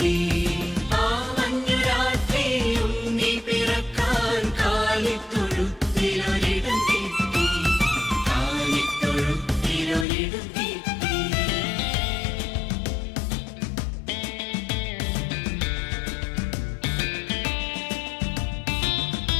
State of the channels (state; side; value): drops out; right; at 10.1 s